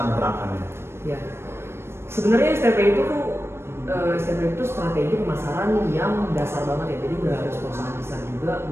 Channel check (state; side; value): late; left; 0.12 ms